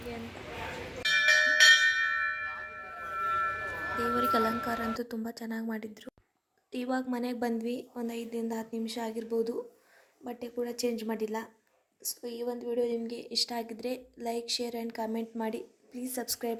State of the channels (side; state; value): both; identical; correlation 1.00